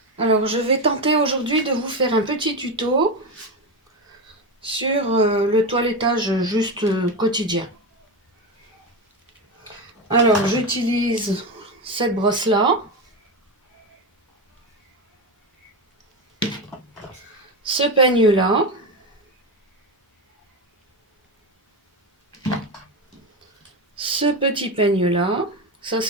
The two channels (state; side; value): normal; both; correlation 0.16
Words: Alors, je vais tenter aujourd'hui de vous faire un petit tuto sur le toilettage juste quotidien. Alors, j'utilise cette brosse-là, ce peigne-là, ce petit peigne-là, ça